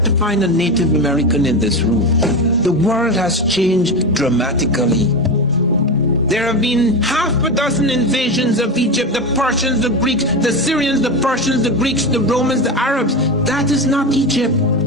to find a Native American in this room. The world has changed dramatically. There have been half a dozen invasions of Egypt, the Persians, the Greeks, the Syrians, the Persians, the Greeks, the Romans, the Arabs. That is not Egypt.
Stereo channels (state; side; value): normal; both; correlation 0.19